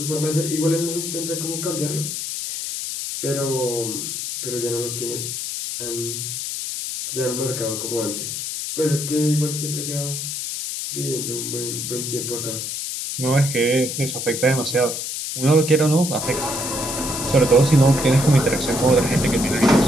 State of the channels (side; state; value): left; noise; hiss, 4 dB below the sound